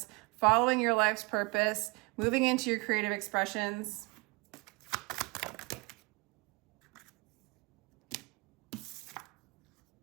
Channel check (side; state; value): left; quieter; 27.6 dB